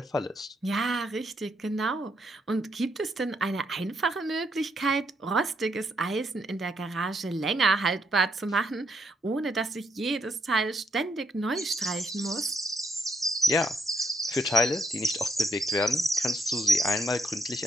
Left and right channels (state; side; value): normal; both; correlation 0.76